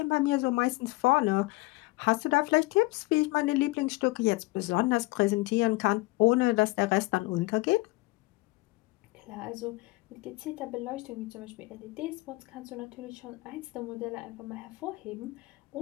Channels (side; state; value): right; quieter; 22.5 dB